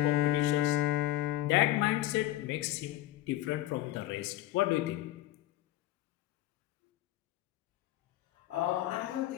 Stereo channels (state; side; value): quieter; right; 15.0 dB